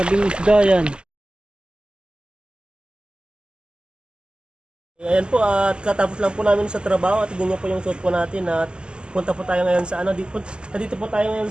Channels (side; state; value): left; late; 0.049 ms